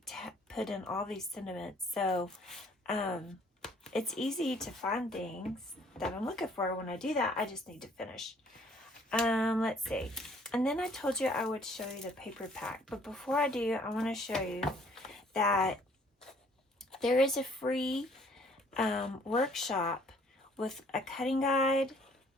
put in all these sentiments, so it's easy to find things that I'm looking for. When I do that, I just need to finish. Let's see. And then I told you I would show you the paper pack, but before I do, I want to show you that there is a free workshop with a cutting guide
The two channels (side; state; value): both; normal; correlation 0.60